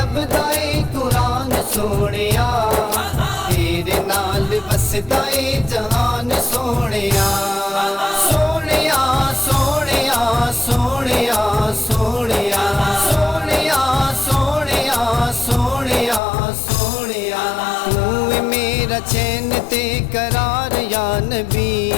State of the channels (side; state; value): right; drops out; at 16.2 s